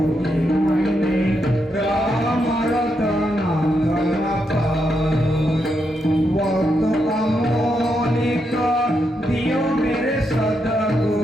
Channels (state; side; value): normal; both; correlation 0.82